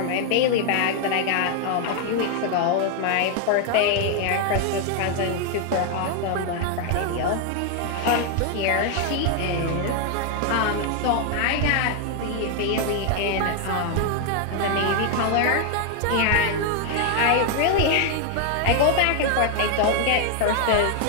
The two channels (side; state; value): both; different; correlation 0.00